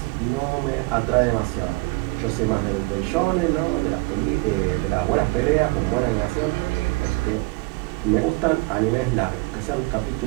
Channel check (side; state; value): left; quieter; 25.1 dB